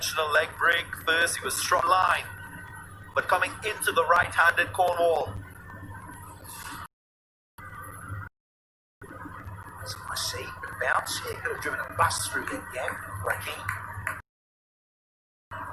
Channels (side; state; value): both; identical; correlation 1.00